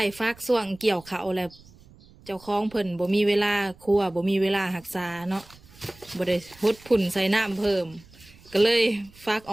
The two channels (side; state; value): right; noise; rumble, 24 dB below the sound